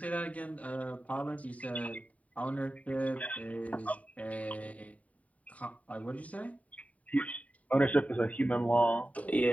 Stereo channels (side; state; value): right; late; 0.069 ms